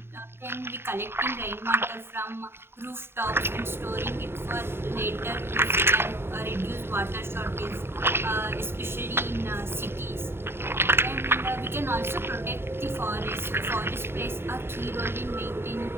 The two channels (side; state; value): left; late; 0.11 ms